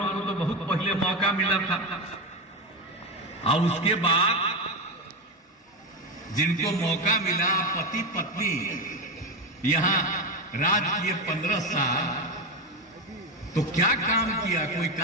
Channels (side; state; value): both; normal; correlation 0.14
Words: को तो बहुत पहले मौका मिला था, और उसके बाद जिनको मौका मिला, पति पत्नी यहां राज किए 15 साल, तो क्या काम किया? कोई